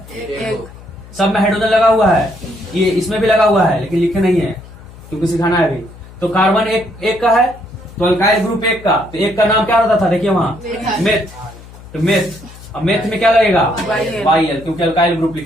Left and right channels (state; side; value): noise; left; hum, 19 dB below the sound